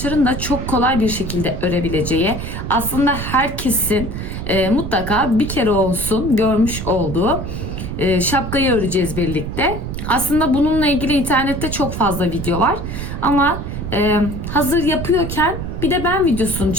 da çok kolay bir şekilde örebileceği, aslında herkesin mutlaka bir kere olsun görmüş olduğu şapkayı öreceğiz birlikte. Aslında bununla ilgili internette çok fazla video var. Ama hazır yapıyorken bir de ben videosunu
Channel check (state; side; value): noise; right; rumble, 6 dB below the sound